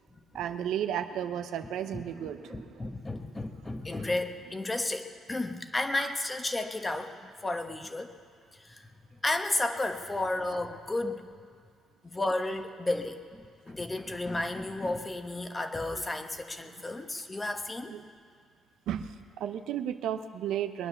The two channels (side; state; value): both; normal; correlation 0.83